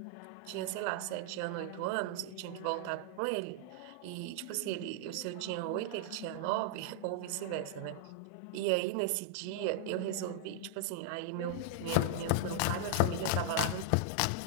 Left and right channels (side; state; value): both; different; correlation 0.00